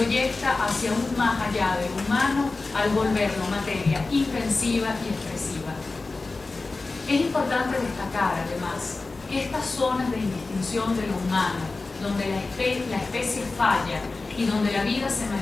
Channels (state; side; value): quieter; right; 3.6 dB